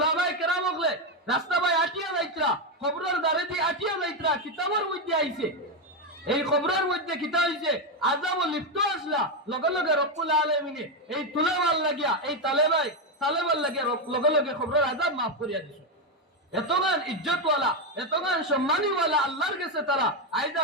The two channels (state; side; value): normal; both; correlation 0.07